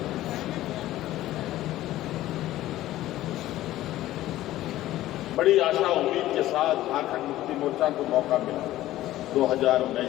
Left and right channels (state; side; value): quieter; right; 14.9 dB